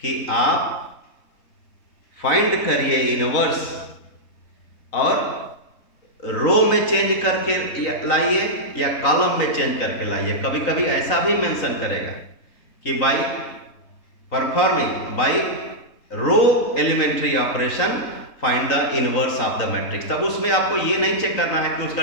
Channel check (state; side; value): late; right; 3.9 ms